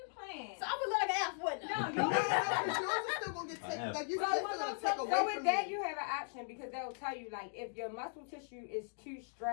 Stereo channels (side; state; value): right; silent; digital silence